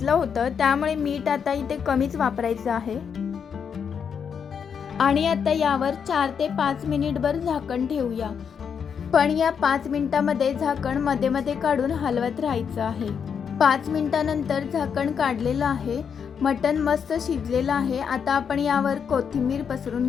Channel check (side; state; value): right; quieter; 7.0 dB